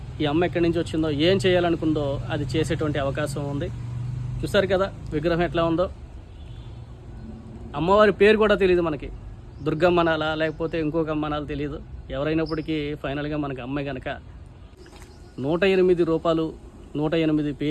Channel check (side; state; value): both; identical; correlation 1.00